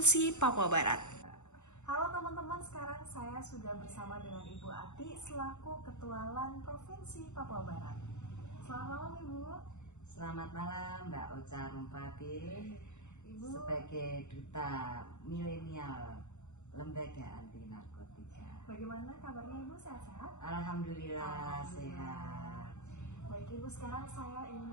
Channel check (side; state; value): right; late; 0.83 ms